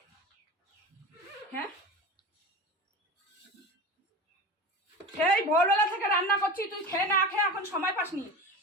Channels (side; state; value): both; normal; correlation 0.30